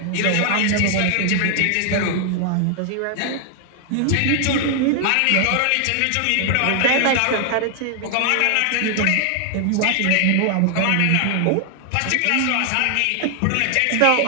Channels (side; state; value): both; different; correlation 0.00